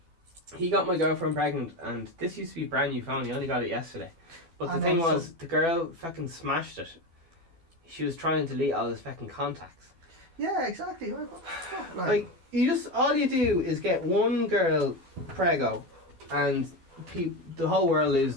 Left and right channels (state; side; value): late; left; 12 ms